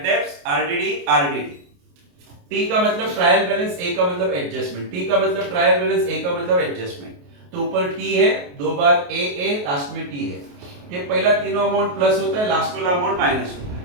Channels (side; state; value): left; late; 28 ms